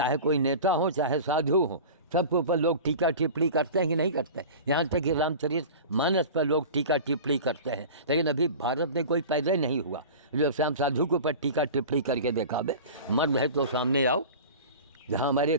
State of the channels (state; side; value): inverted; both; correlation -0.35